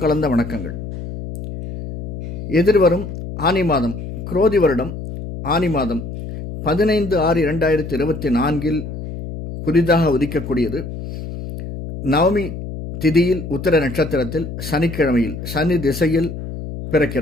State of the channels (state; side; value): noise; left; hum, 8 dB below the sound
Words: கலந்த வணக்கங்கள். எதிர்வரும் ஆனி மாதம், குரோதி வருடம் ஆனி மாதம் 15/6/2024 புதிதாக உதிக்கக்கூடியது. நவமி திதியில் உத்திர நட்சத்திரத்தில் சனிக்கிழமையில் சனி திசையில்